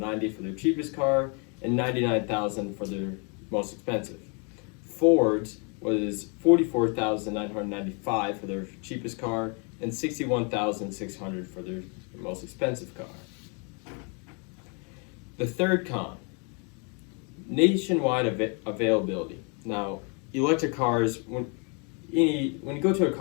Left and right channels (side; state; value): right; quieter; 35.5 dB